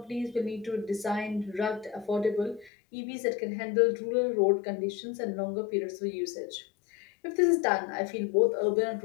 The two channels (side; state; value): right; drops out; at 2.7 s